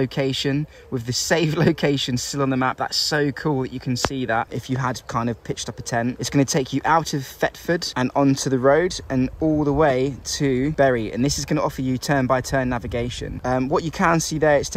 with the save location still on the map. That's so cool that you can see that if you had kind of pitched up a tent. It's going to take you out of Thetford and onto the road and all the way to Bury, and this is going to offer you turn-by-turn navigation. What you can see there, it's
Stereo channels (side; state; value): both; identical; correlation 1.00